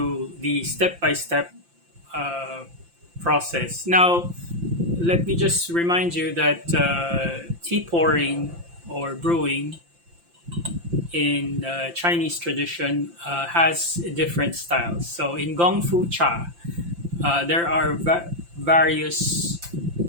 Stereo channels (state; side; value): late; left; 5.8 ms